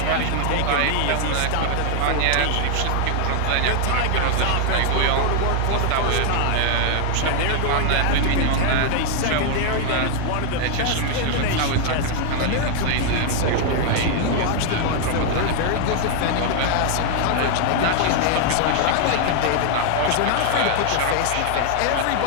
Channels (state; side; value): different; both; correlation 0.00